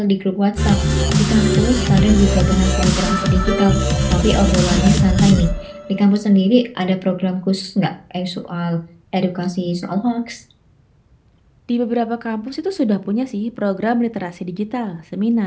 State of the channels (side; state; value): both; identical; correlation 1.00